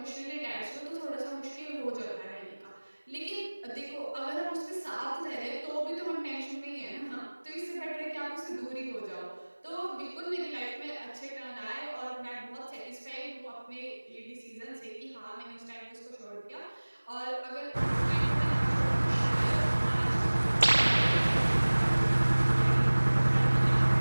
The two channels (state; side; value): inverted; both; correlation -1.00